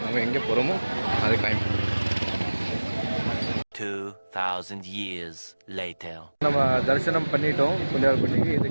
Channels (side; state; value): both; inverted; correlation -1.00